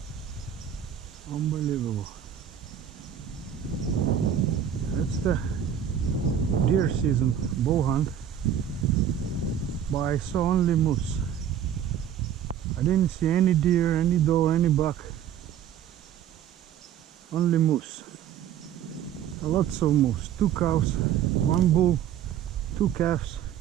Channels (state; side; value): quieter; left; 9.4 dB